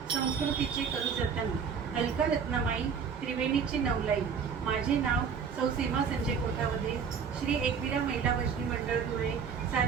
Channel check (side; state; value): left; quieter; 6.5 dB